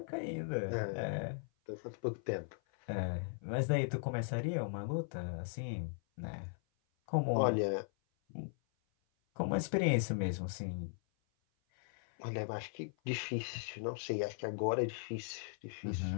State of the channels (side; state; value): right; silent; 52 dB below the other